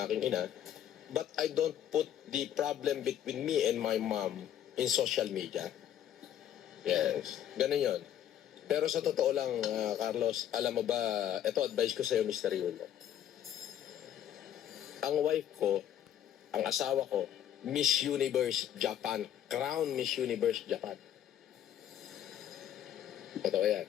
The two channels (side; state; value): right; quieter; 10.6 dB